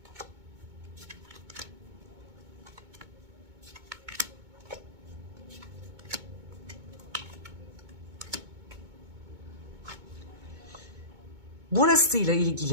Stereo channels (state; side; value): late; left; 2.2 ms